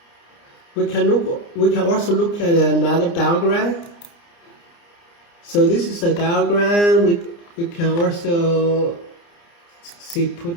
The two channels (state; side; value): late; right; 29 ms